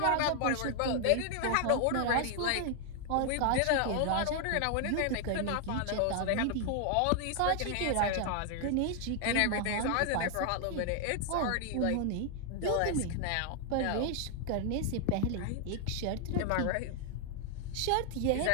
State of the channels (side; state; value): both; different; correlation 0.00